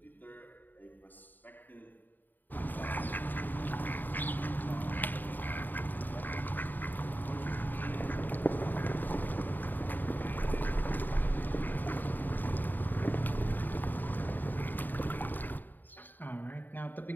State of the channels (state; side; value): late; right; 0.089 ms